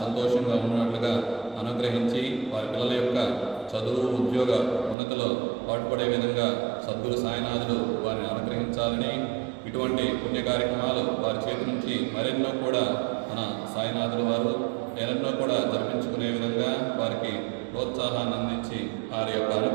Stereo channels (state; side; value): drops out; left; at 5.0 s